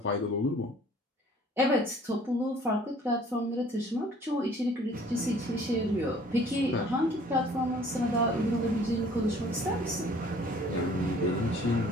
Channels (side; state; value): both; normal; correlation 0.54